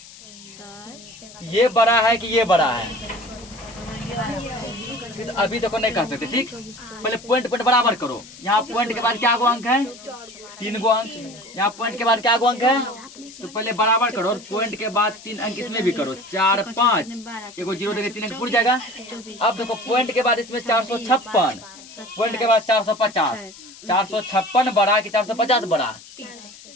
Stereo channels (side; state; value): left; noise; hiss, 19 dB below the sound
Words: ये बड़ा है कि ये बड़ा है? तो अभी तक नहीं कर सकते। ठीक, पहले पॉइंट बराबर करो। यहाँ पॉइंट के बाद क्या गो अंक है? 3 गो अंक। यहाँ पॉइंट के बाद क्या गो अंक है? तो पहले बराबर करो और पॉइंट के बाद 3 अंक इसमें भी करो। 4, 5, एगो 0 देके 3 अंक पूरा जाएगा। अब देखो पॉइंट के बाद इसमें 456, पॉइंट के बाद 450। 456 बड़ा कि 450 बड़ा?